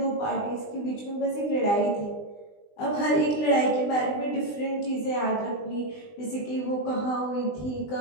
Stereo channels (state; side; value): late; right; 20 ms